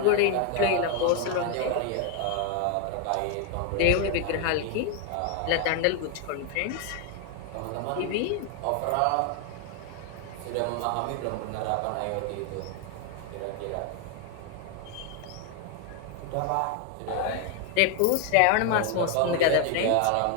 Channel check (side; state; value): both; different; correlation 0.01